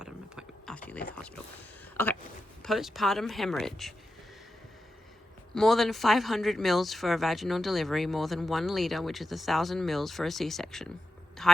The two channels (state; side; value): normal; both; correlation 0.89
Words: appointment after you leave the hospital. Okay, postpartum hemorrhage. More than 500 mils for a vaginal delivery, more than 1 liter, which is 1,000 mils for a C-section.